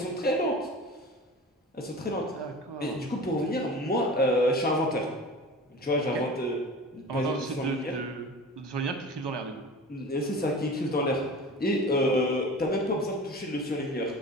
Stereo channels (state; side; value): normal; both; correlation 0.36